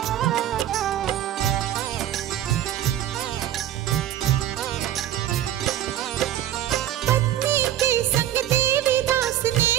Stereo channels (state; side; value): quieter; left; 12.1 dB